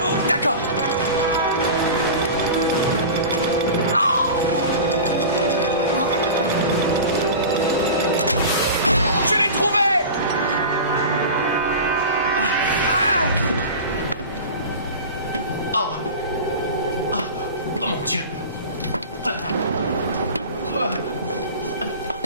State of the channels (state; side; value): inverted; both; correlation -0.32